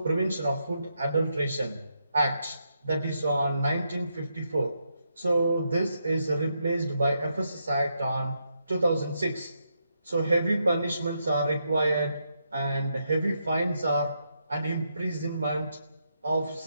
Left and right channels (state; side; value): inverted; both; correlation -0.81